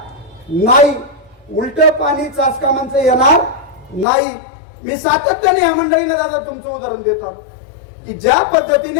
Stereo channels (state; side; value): drops out; right; at 4.0 s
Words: नाही, उलट पाणी चासकामांचं येणार नाही. मी सातत्याने या मंडळीला दादा तुमचं उदाहरण देतो की ज्या